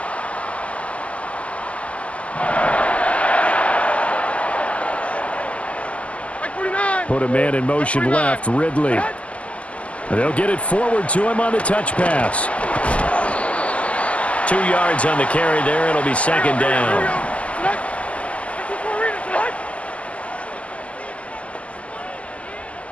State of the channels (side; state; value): right; late; 0.064 ms